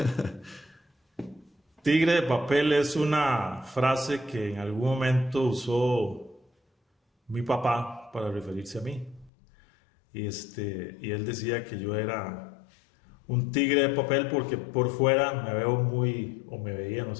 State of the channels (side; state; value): right; drops out; at 9.3 s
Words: Tigre de Papel es una frase que en algún momento usó mi papá para referirse a mí. Y él decía que yo era un tigre de papel porque por fuera me veo muy, o me veía, no